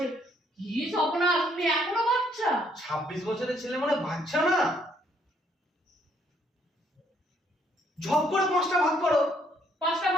কি স্বপ্না, তুমি এখনো বাচ্চা? 26 বছরের ছেলে মানে বাচ্চা না। ঝপ করে 5টা ভাগ করো। 5টা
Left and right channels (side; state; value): both; normal; correlation 0.68